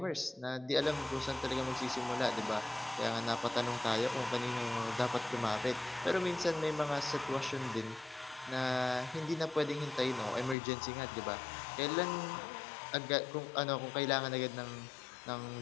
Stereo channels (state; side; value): drops out; right; at 10.6 s